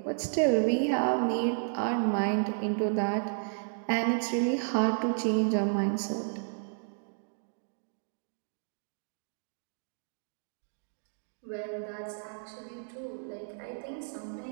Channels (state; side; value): silent; left; digital silence